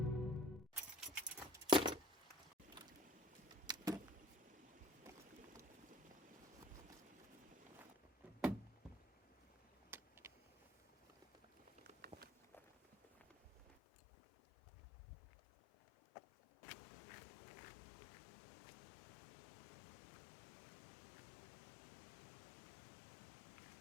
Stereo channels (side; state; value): right; drops out; at 13.8 s